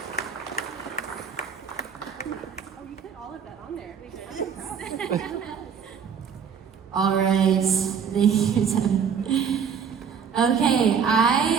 Oh, you put all of that on there. All right, thank you, Tim. Okay,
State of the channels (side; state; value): left; quieter; 7.0 dB